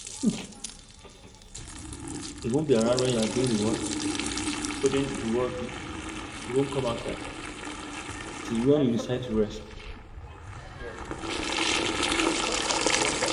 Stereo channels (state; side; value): identical; both; correlation 1.00